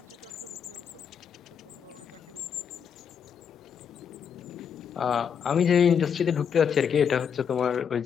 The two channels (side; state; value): right; quieter; 7.4 dB